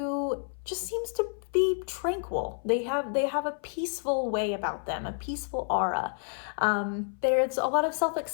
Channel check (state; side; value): silent; right; 58 dB below the other